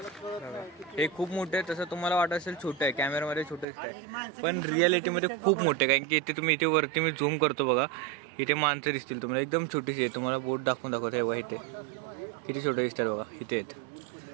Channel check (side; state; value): left; drops out; at 3.7 s